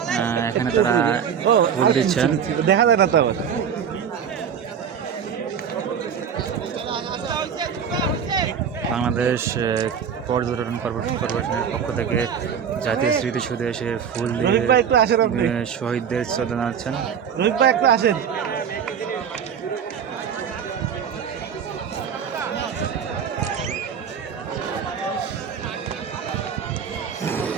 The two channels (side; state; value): left; quieter; 7.6 dB